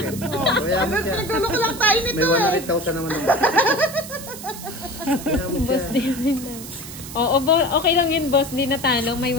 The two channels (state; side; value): noise; right; hiss, 12 dB below the sound